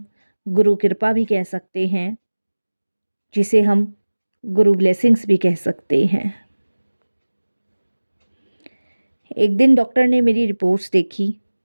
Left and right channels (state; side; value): inverted; both; correlation -1.00